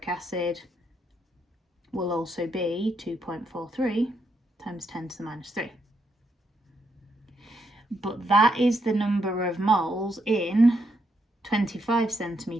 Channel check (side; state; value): both; normal; correlation 0.78